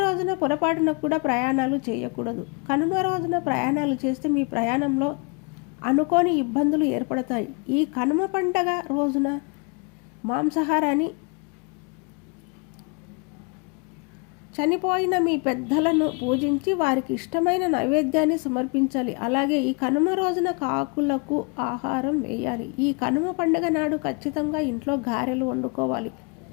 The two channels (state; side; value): quieter; right; 32.4 dB